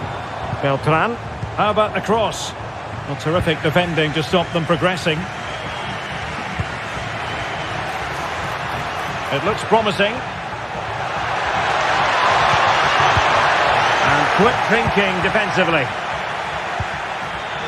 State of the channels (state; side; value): identical; both; correlation 1.00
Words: Beltran. How about the cross? Well, terrific defending to stop them progressing. It looks promising. And quick thinking defensively.